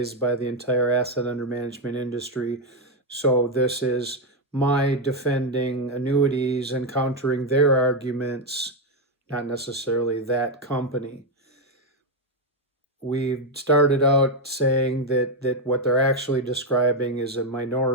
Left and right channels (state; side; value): normal; both; correlation 0.05